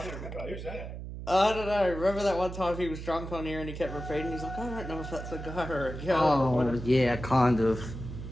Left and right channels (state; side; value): noise; right; hum, 9 dB below the sound